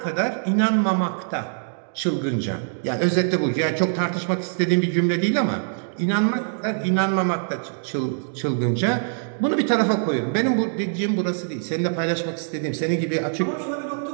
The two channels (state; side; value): silent; left; digital silence